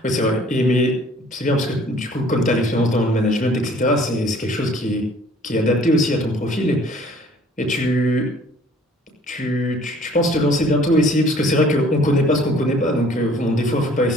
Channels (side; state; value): both; normal; correlation 0.55